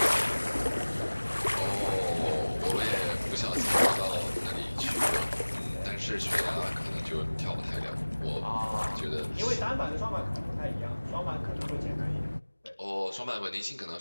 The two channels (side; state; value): both; inverted; correlation -1.00